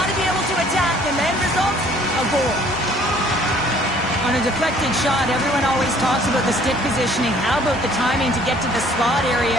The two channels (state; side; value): normal; both; correlation 0.57